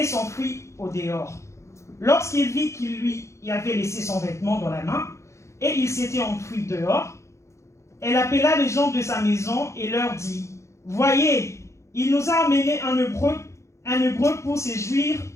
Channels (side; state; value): right; late; 0.14 ms